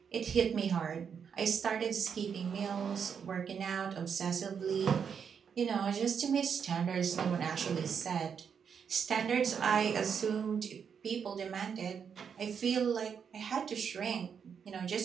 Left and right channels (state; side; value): quieter; left; 7.0 dB